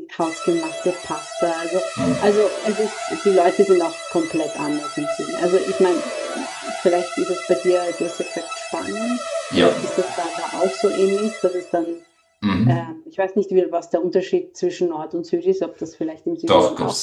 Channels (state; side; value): identical; both; correlation 1.00